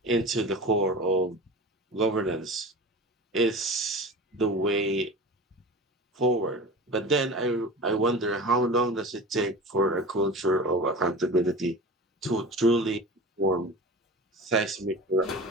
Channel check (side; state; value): both; normal; correlation 0.33